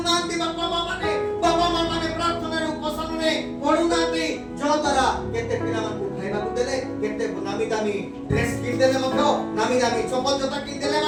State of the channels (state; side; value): identical; both; correlation 1.00